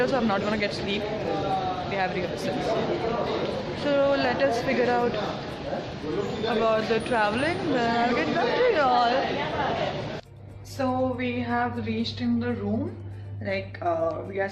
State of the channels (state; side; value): identical; both; correlation 1.00